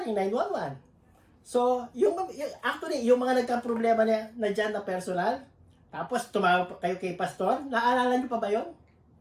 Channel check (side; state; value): both; identical; correlation 1.00